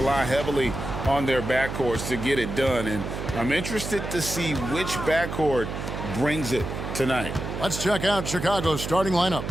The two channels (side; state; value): right; noise; hum, 6 dB below the sound